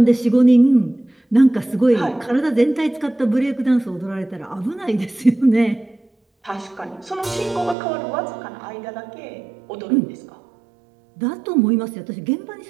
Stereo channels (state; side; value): drops out; left; at 7.8 s